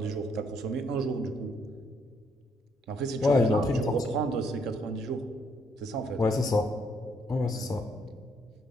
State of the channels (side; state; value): both; normal; correlation 0.71